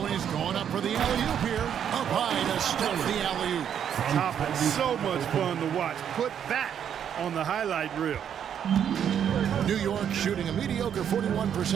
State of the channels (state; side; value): quieter; left; 8.8 dB